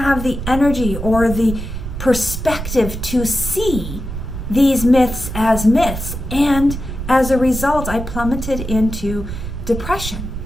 the energy or the perspective to see these myths as myths. And as a result, I plummeted into depression.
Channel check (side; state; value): right; noise; rumble, 7 dB below the sound